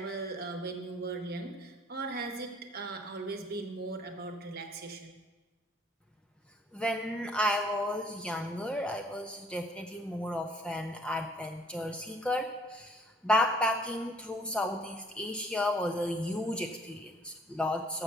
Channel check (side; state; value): both; normal; correlation 0.58